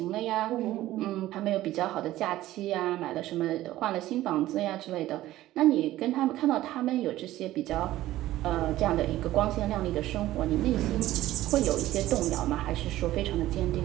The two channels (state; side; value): quieter; left; 15.2 dB